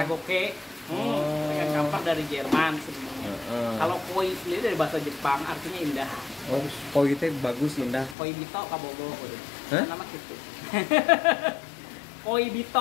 Ikan kamper dari Jerman sebenarnya. Kalau koi sendiri dari bahasa Jepang artinya indah. Oh, koi itu bagus indah. Koi bito kabogo. Nama gitu. Koi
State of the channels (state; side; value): drops out; right; at 8.2 s